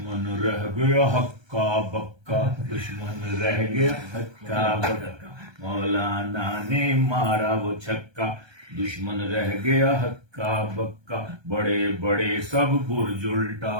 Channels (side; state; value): left; late; 1.3 ms